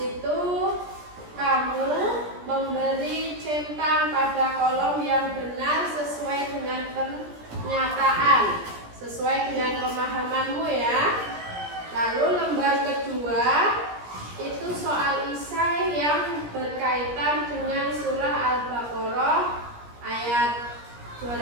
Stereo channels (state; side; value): late; left; 17 ms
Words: kamu memberi centang pada kolom yang benar sesuai dengan pernyataan, sesuai dengan pemahamanmu ya. Lalu lembar kedua itu soal isai yang berkaitan dengan surah Al-Baqarah ayat